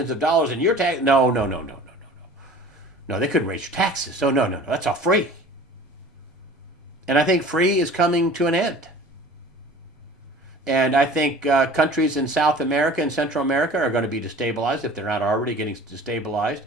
of dollars in your tax," no, no, no, no, no, no, no, no. They couldn't raise your taxes. So no, no, no. That's all free. And I think free is coming to an end. And I think countries in South America and Central America are going to be destabilized if they're not already getting destabilized.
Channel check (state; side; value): normal; both; correlation 0.44